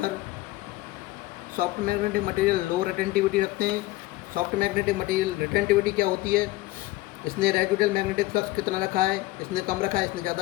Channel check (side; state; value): right; quieter; 18.4 dB